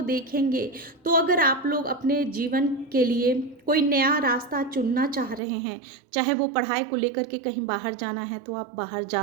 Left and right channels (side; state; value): left; drops out; at 5.4 s